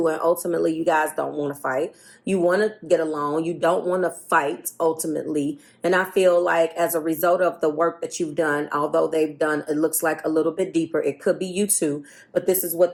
and ultimately you guys don't want to fight. You want to get along. You don't want to fight, ultimately. And I feel like as a result of the work that you've done, although they've done, it looks like a little bit deeper. It could be you too, but this is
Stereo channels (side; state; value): both; identical; correlation 1.00